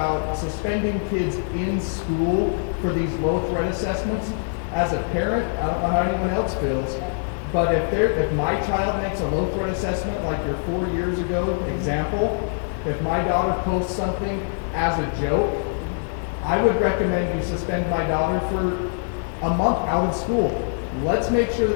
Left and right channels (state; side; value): silent; right; digital silence